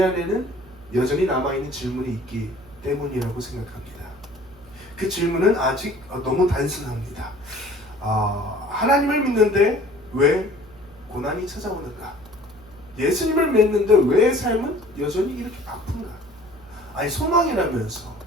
안에는 여전히 남아있는 질문이 있기 때문이라고 생각합니다. 그 질문은 아직 너무 단순합니다. 하나님을 믿는데 왜 고난이 찾아오는가? 예수님을 믿는데 왜 삶은 여전히 이렇게 아픈가? 아니 소망이라면서,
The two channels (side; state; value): right; noise; hum, 24 dB below the sound